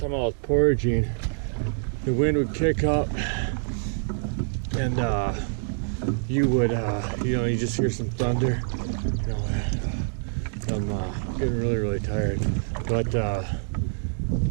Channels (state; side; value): silent; left; digital silence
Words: I was portaging, the wind would kick up, and you would, you know, you just hear some thunder. You know, I'm getting really tired, but